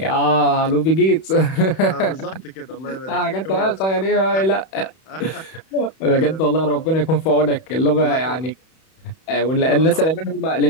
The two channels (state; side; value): late; right; 31 ms